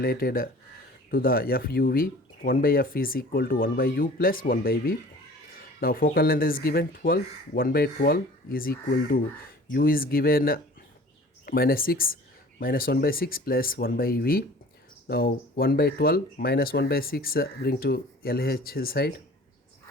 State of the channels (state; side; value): normal; both; correlation 0.46